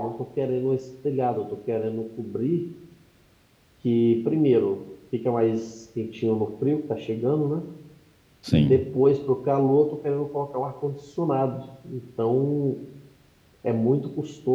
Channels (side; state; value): both; identical; correlation 1.00